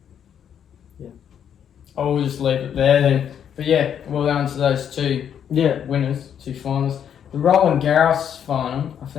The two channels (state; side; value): quieter; right; 8.8 dB